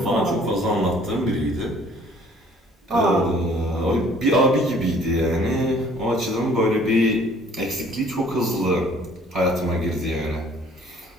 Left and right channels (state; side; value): normal; both; correlation 0.56